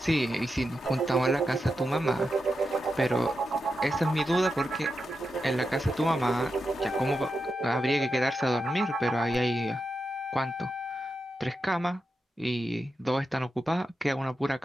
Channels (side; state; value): both; normal; correlation 0.88